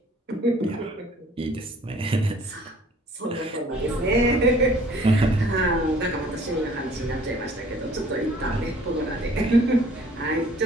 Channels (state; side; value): normal; both; correlation 0.55